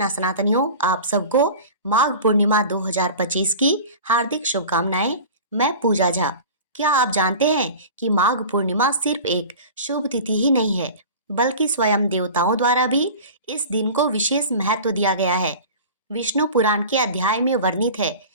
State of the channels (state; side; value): inverted; both; correlation -0.36